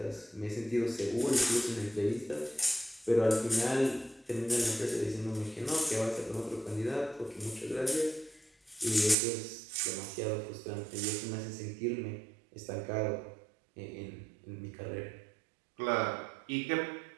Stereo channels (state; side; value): drops out; left; at 9.2 s